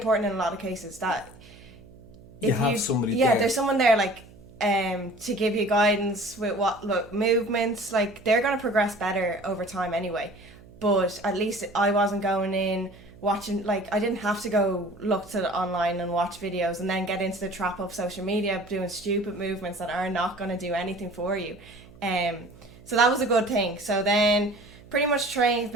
in a lot of cases. That if you have somebody there. there's someone there, like, to give you guidance with movements. Like, they're going to progress better over time anyway. But at least I wasn't going in watching, like, I didn't have to go look to online and watch videos and then get into the trap of social media doing stupid movements that are not going to do anything for you. So that was a good thing. So then pretty much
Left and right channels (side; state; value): right; noise; hum, 22 dB below the sound